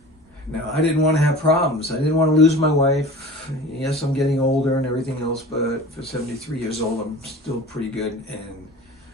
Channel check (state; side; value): normal; both; correlation 0.39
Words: Now, I didn't want to have problems. I didn't want to lose my wife. Yes, I'm getting older and everything else, but for 73 years old, I'm still pretty good and